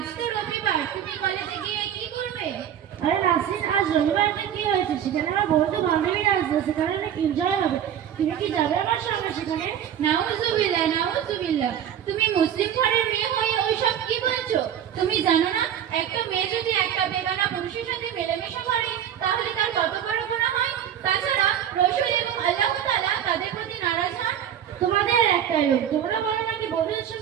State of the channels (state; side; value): quieter; left; 9.7 dB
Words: তো রবিবার, তুমি কলেজে গিয়ে কি করবে? আরে নাসরিন, আজ রবিবারটা কি হয়েছে? সেখানে আমার বন্ধু বান্ধবীরা আসবে, সেখানে অনেক এনজয় হবে। তুমি কি যাবে আমার সঙ্গে সেখানে? নাউজুবিল্লাহ, নাউজুবিল্লাহ। তুমি মুসলিম ঘরের মেয়ে হয়ে ওইসব কি বলছো? তুমি জানো না একটা মেয়ে যদি একটা বেগানা পুরুষের সাথে মেলামেশা করে তাহলে তার কত বড় গুনাহ হয়? তাছাড়া রাসূল এবং আল্লাহ তাআলা তাদের প্রতি নারাজ হন। তোমাদের একটাই লোক, তোমরা বলো নাকি বন্ধুদের